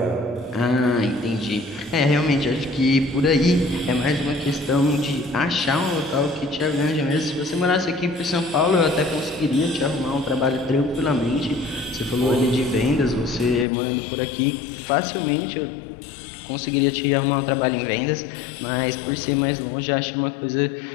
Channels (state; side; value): drops out; right; at 13.7 s